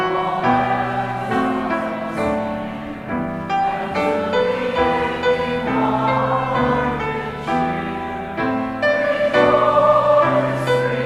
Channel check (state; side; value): identical; both; correlation 1.00